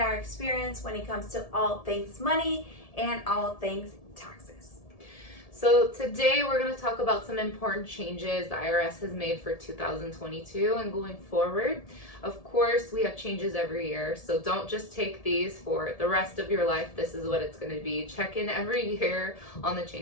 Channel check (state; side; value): late; right; 1.7 ms